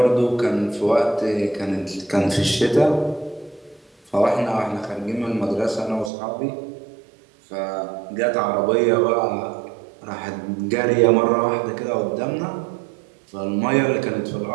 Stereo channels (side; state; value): left; drops out; at 6.1 s